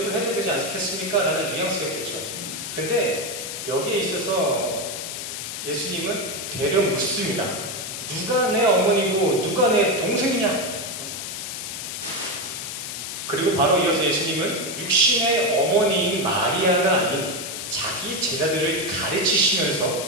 해줘야 되지 않겠습니까? 라는 뉘앙스였겠죠. 근데 여기에 있어서 예수님은 되려 묻습니다. 누가 내 어머니고 누가 내 동생이냐? 그리고 바로 이어서 예수님은 육신의 어머니인 마리아가 아닌 자기 제자들을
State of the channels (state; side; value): noise; left; hiss, 6 dB below the sound